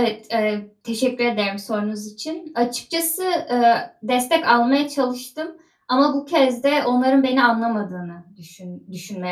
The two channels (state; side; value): identical; both; correlation 1.00